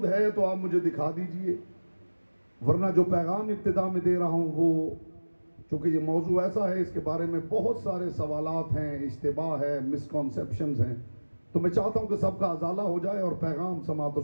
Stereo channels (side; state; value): both; inverted; correlation -1.00